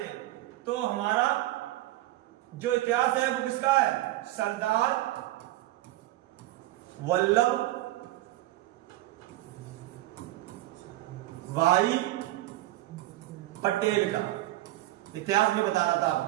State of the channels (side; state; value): left; quieter; 16.5 dB